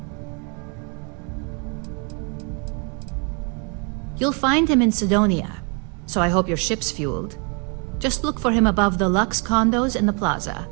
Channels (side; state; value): left; quieter; 35.8 dB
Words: You'll find him in Sidonia, so I hope your ship's fueled. Just look for him above the Lux condos in the plaza.